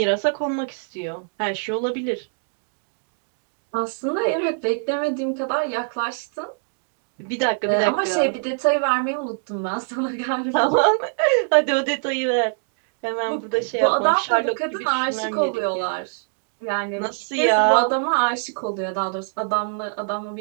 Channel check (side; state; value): left; silent; digital silence